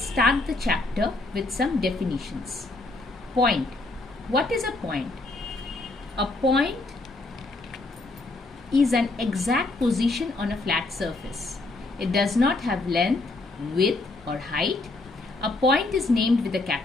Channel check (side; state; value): right; quieter; 3.1 dB